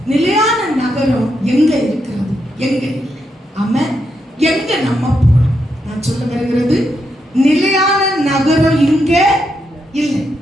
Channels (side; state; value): both; normal; correlation 0.82